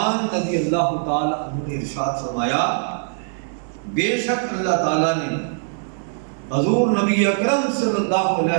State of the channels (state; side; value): silent; left; 62 dB below the other